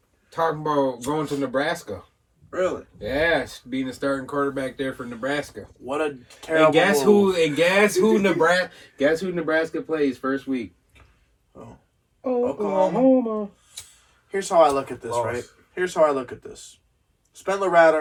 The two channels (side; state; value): both; identical; correlation 1.00